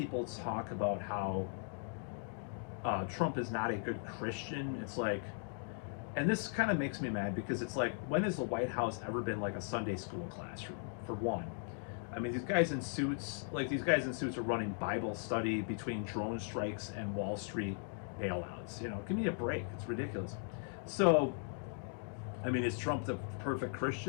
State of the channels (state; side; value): silent; right; 52 dB below the other